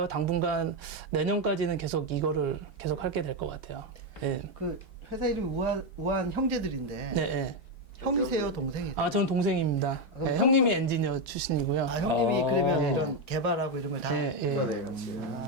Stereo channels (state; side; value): normal; both; correlation 0.06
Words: 당분간 내년까지는 계속 이거를 계속 하게 될 것 같아요. 예. 그 회사 이름이 우한 형제들인데 네, 예. 형이세요, 동생이세요? 전 동생입니다. 그럼 예, 형님이 엔지니어 출신이고요. 형님이 그러면 네. 이런 개발하고 이런 걸 다. 예, 예.